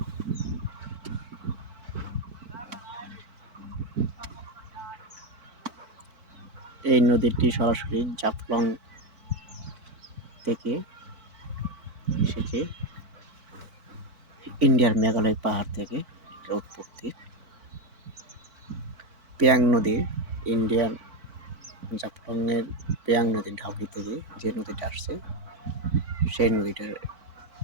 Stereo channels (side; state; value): left; late; 4.5 ms